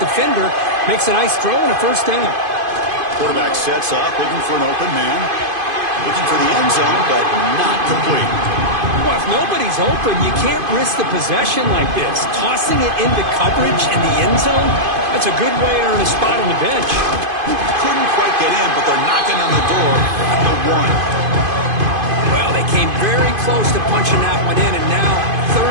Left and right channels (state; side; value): late; left; 2.5 ms